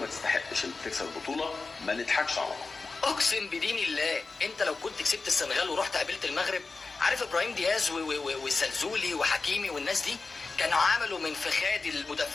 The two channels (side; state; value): right; quieter; 4.0 dB